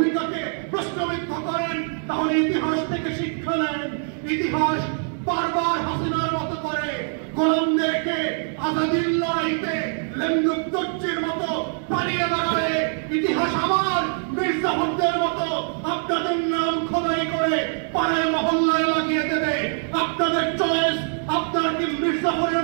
প্রশ্নবিদ্ধ করেন, তাহলে ইতিহাস থেকে শিক্ষা নেন। ইতিহাস বারবার হাসিনার মতো করে গোলামদেরকে আজাদির লড়াইতে লেন্দুক দর্জির মতো পালিয়ে দাঁড়াবে। ইতিহাস আবার মির্জাফরদের মতো আপনাদের নাম খোদাই করে পাড়ায় মহল্লায় লাগিয়ে দেবে। আপনাদের চয়েস, আপনারা কি মির্জাফরের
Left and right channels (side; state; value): left; silent; 63 dB below the other